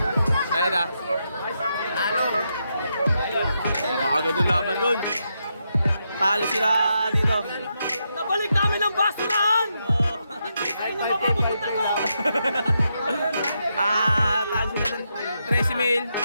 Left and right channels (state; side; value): inverted; both; correlation -0.83